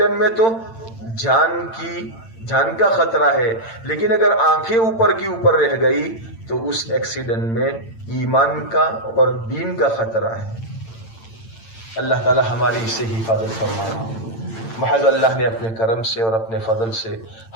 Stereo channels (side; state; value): right; late; 8.9 ms